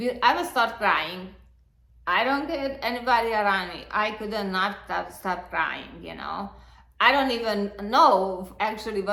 I would start crying. I don't get anybody around me. I could not stop crying, I don't even know actually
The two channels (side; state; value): both; identical; correlation 1.00